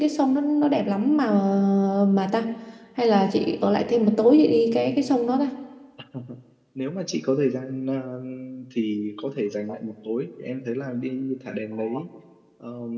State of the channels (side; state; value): both; identical; correlation 1.00